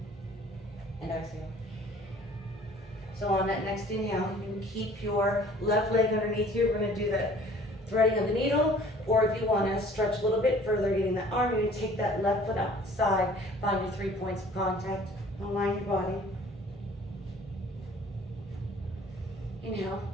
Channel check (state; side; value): normal; both; correlation 0.52